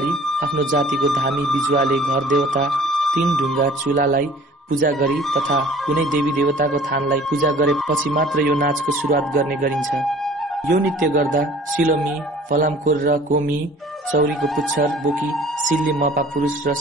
आफ्नो जातिको धामी बिजुवाले घर देवता 3 ढुङ्गा चुलालाई पूजा गरी तथा कुनै देवी देवताको थानलाई पूजा गरेपछि मात्र यो नाचको सुरुवात गर्ने गरिन्छ। यो नृत्य गर्दा सिलोमी, फलामखोर र कोमी चौरीको पुच्छर बोकी सिल्ली मपा पुरुष र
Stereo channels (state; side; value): normal; both; correlation 0.50